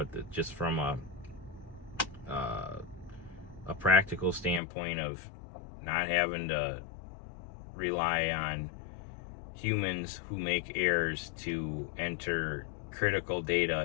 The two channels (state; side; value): drops out; right; at 4.6 s